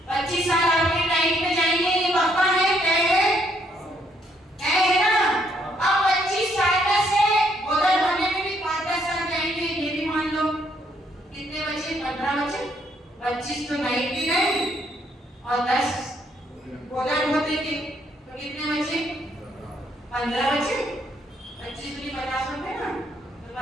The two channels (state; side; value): normal; both; correlation 0.71